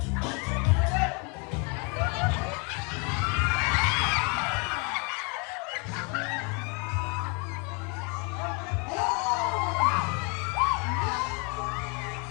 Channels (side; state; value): right; quieter; 33.0 dB